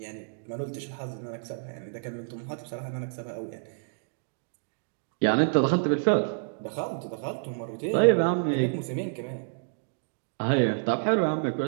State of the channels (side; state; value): left; silent; digital silence